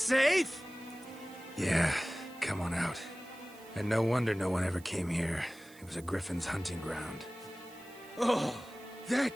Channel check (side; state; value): right; noise; hiss, 23 dB below the sound